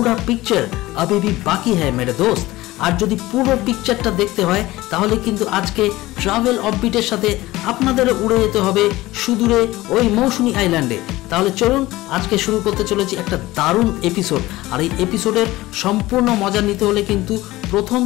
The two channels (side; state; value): right; quieter; 18.1 dB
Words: पिक्चर अभी भी बाकी है मेरे दोस्त। আর যদি পুরো পিকচারটা দেখতে হয় তাহলে কিন্তু আজকে ট্রাভেল অফবিটের সাথে আপনাদের উড়ে যেতে হবে সুদূরে ওই মৌসুনী আইল্যান্ডে। তাহলে চলুন আজকে শুরু করতে চলেছি একটা দারুণ এপিসোড। আর এই এপিসোডের সম্পূর্ণ মজা নিতে হলে কিন্তু প্রথম